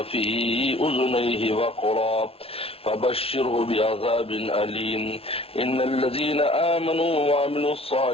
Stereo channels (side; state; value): right; late; 0.27 ms